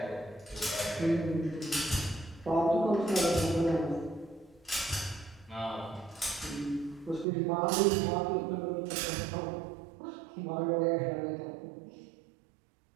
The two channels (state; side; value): drops out; left; at 7.2 s